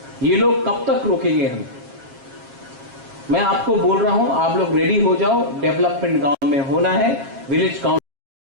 ये लोग कब तक रोकेंगे हमें? मैं आपको बोल रहा हूं, आप लोग रेडी हो जाओ। डेवलपमेंट गांव में होना है, विलेज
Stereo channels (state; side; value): late; left; 7.4 ms